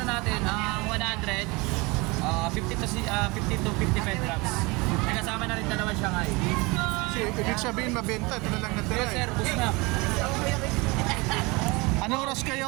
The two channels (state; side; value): quieter; left; 25.5 dB